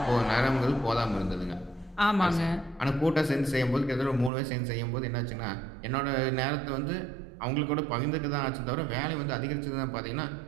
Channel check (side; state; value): left; drops out; at 4.3 s